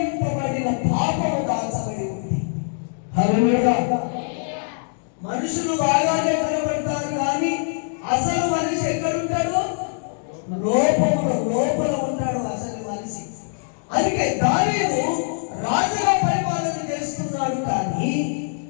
పాపము దాచబడి ఉంది. హల్లెలూయా. మనుషులు బాగానే కనబడతారు, కానీ అసలు మనిషి ఎక్కడుంటాడు? లోపల ఉంటాడు అసలు మనిషి. అందుకే దావీదు రాజుగా పరిపాలన చేస్తున్నాడు, కానీ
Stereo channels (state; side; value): silent; right; digital silence